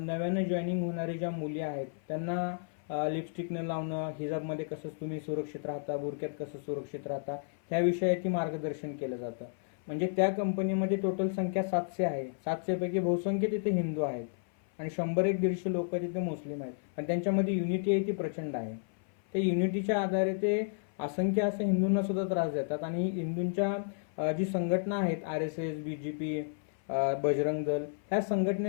जॉईनिंग होणारी ज्या मुली आहेत त्यांना लिपस्टिक न लावणं, हिजाबमध्ये कसं तुम्ही सुरक्षित राहता, बुरक्यात कसं सुरक्षित राहता, ह्या विषयाची मार्गदर्शन केलं जातं. म्हणजे त्या कंपनीमध्ये टोटल संख्या 700 आहे. 700 पैकी बहुसंख्य तिथे हिंदू आहेत आणि 100-150 लोक तिथे मुस्लिम आहेत. पण त्यांच्यामध्ये युनिटी आहे ती प्रचंड आहे. त्या युनिटीच्या आधारे ते असंख्य असे हिंदूंना सुद्धा त्रास देतात आणि हिंदूंच्या जी संघटना आहेत, RSS, BJP, बजरंग दल, ह्या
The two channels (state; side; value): silent; right; 56 dB below the other